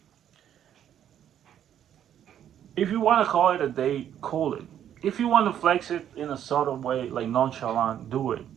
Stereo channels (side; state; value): left; quieter; 10.1 dB